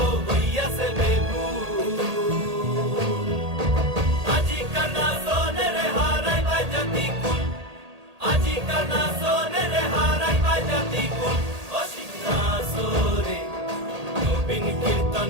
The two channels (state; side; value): late; left; 1.8 ms